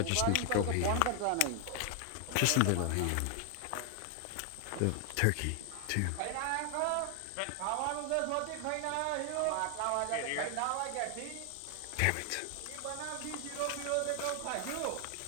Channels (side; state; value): both; different; correlation 0.00